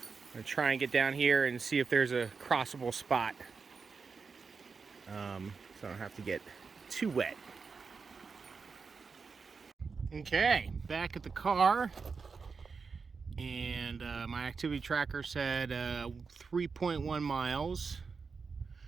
gonna try and get down here and see if there's a crossable spot, so I don't have to get too wet. Okay, back at the car, and my activity tracker said 3.1 miles.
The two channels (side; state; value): left; quieter; 5.0 dB